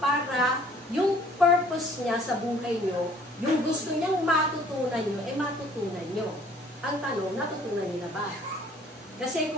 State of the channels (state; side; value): normal; both; correlation 0.56